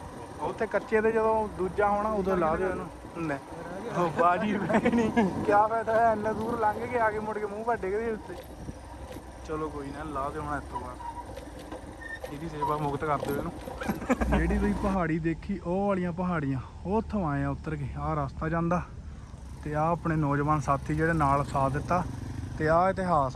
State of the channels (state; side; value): identical; both; correlation 1.00